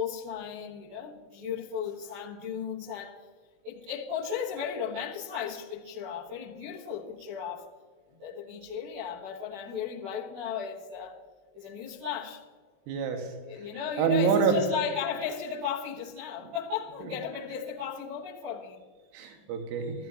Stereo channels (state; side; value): late; left; 21 ms